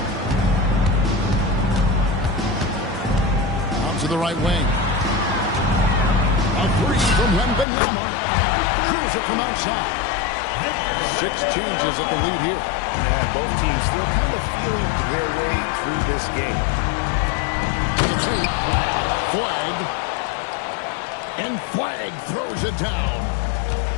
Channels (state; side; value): drops out; right; at 7.7 s